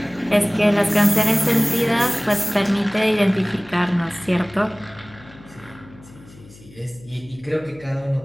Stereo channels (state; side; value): noise; left; hum, 22 dB below the sound